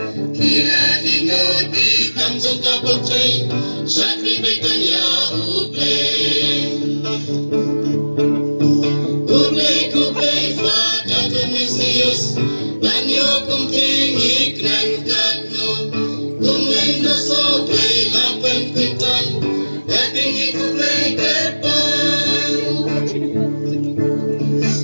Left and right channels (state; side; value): inverted; both; correlation -1.00